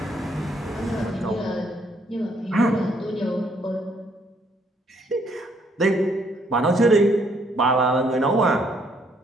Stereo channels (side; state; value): both; normal; correlation 0.68